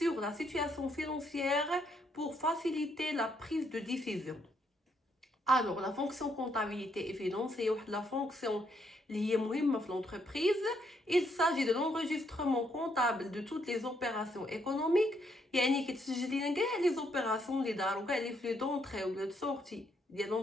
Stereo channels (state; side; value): normal; both; correlation 0.74